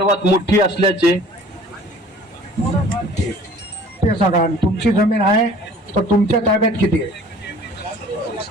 मोठी असल्याचे ते सांगा। तुमची जमीन आहे तर तुमच्या ताब्यात किती आहे?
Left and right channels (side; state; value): both; normal; correlation 0.49